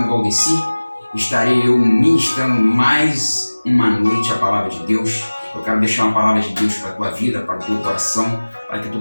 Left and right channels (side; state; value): both; inverted; correlation -1.00